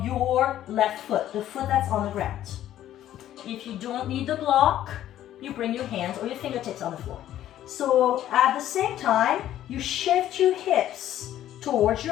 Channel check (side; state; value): right; quieter; 12.3 dB